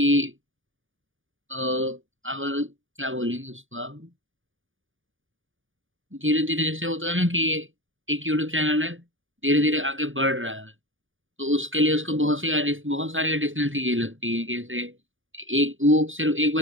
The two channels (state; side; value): late; left; 0.57 ms